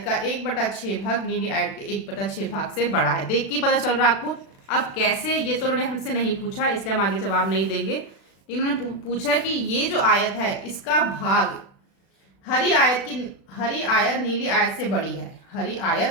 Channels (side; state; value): right; late; 36 ms